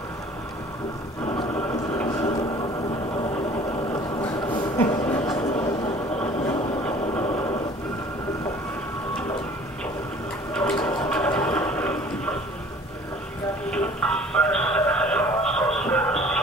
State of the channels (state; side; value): normal; both; correlation 0.50